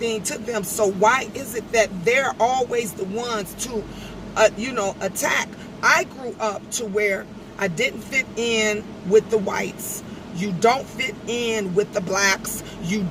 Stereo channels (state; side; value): identical; both; correlation 1.00